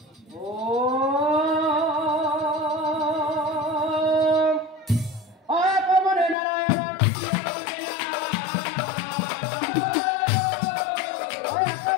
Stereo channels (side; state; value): right; drops out; at 6.4 s